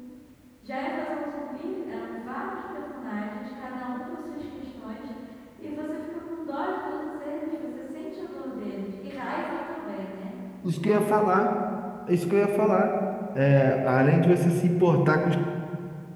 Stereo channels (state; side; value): identical; both; correlation 1.00